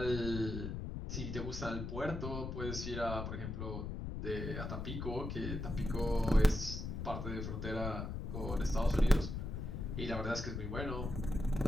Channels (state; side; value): noise; left; rumble, 4 dB below the sound